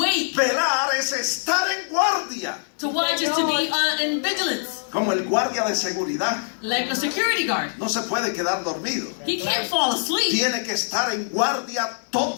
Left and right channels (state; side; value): silent; right; digital silence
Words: Velar es estar en guardia. To watch is to be in vigilance, Como el guardia de seguridad. like a security guard. No se puede quedar dormido. He can't fall asleep. Tiene que estar en guardia